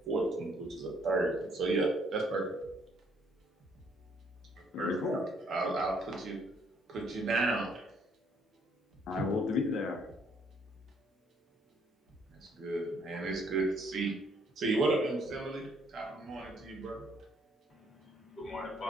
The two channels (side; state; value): both; normal; correlation 0.66